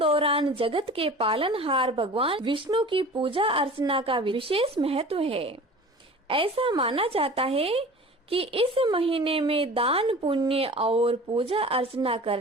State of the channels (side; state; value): both; normal; correlation 0.40